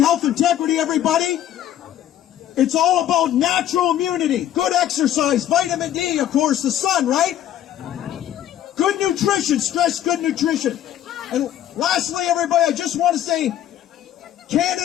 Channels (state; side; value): quieter; right; 11.6 dB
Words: integrity, everybody. It's all about natural immunity, good exercise, vitamin D, of course, the sun, right? Good nutrition, stress good nutrition. And lastly, everybody, I just want to say,